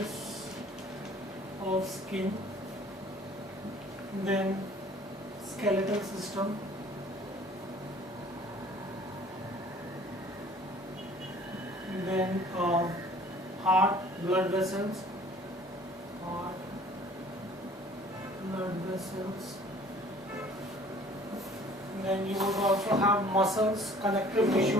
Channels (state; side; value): normal; both; correlation 0.52